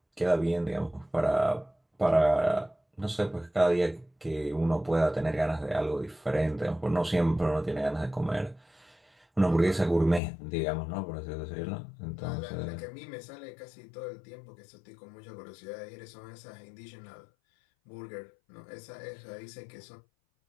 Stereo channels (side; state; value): right; drops out; at 10.2 s